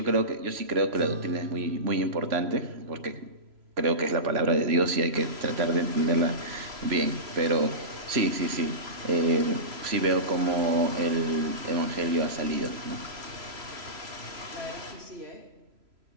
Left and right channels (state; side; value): late; left; 3.0 ms